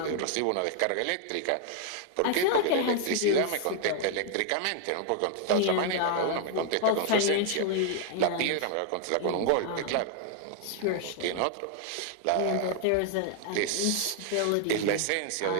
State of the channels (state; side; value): different; both; correlation 0.00